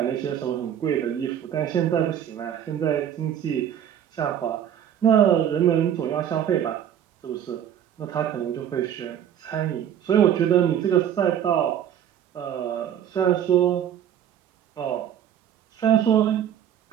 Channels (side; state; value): left; quieter; 9.8 dB